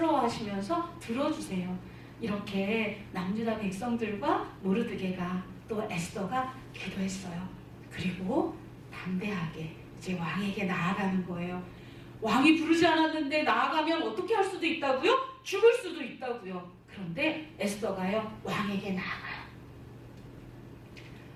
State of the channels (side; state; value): both; identical; correlation 1.00